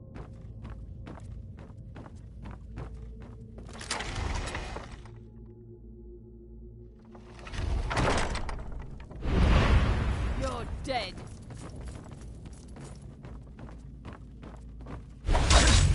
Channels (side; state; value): both; identical; correlation 1.00